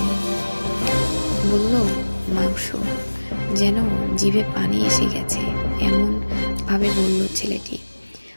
বলল, মাংস। যেন জিভে পানি এসে গেছে এমন ভাবে বলল ছেলেটি।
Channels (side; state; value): both; inverted; correlation -1.00